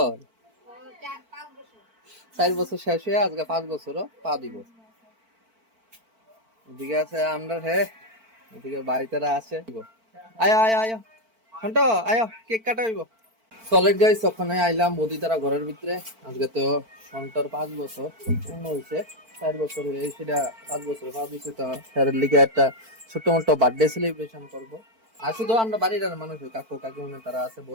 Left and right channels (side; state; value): left; late; 4.5 ms